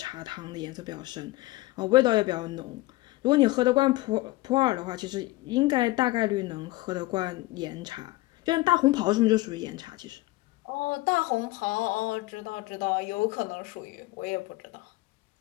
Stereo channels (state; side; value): quieter; right; 19.6 dB